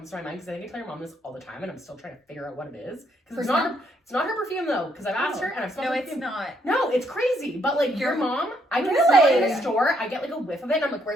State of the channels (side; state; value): both; normal; correlation 0.72